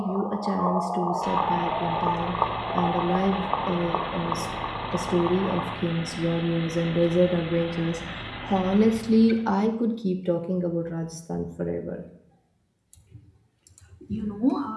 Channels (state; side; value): identical; both; correlation 1.00